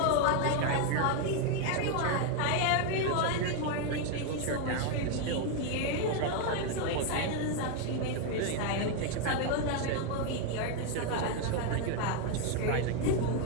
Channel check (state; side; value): different; both; correlation 0.01